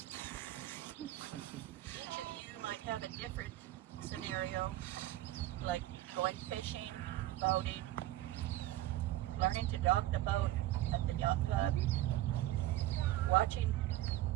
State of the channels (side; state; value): left; quieter; 15.2 dB